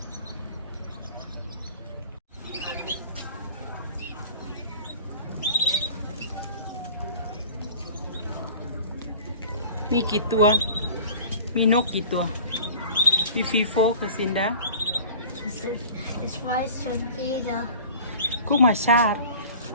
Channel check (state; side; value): inverted; both; correlation -0.42